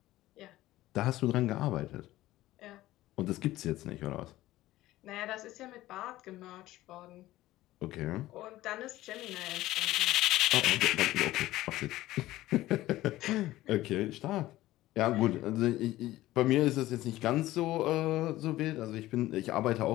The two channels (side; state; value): right; quieter; 16.2 dB